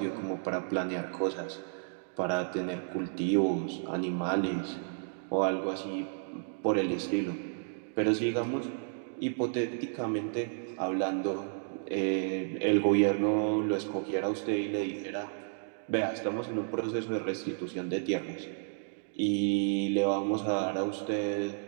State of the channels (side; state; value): left; silent; digital silence